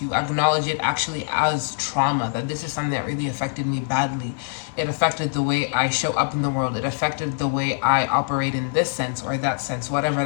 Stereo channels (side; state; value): right; silent; 63 dB below the other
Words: you. Acknowledge it actually as trauma, that this is something that really affected me badly. It affected the way I show up in the world. It affected the way I operate in this sense or that sense. Whatever